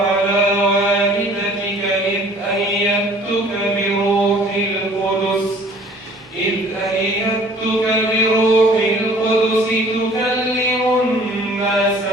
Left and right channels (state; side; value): normal; both; correlation 0.52